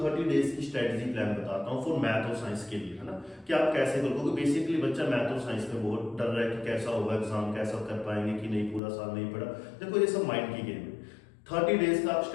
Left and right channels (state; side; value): drops out; right; at 8.8 s